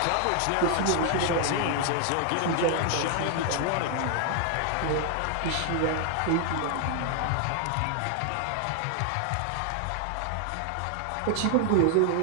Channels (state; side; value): different; both; correlation 0.00